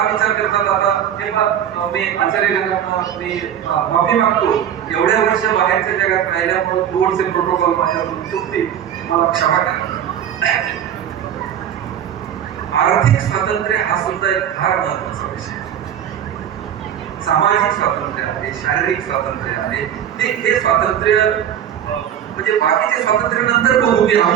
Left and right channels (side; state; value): left; quieter; 9.7 dB